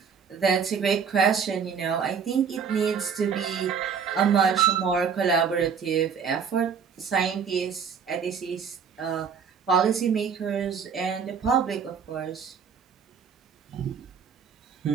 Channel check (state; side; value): quieter; left; 6.6 dB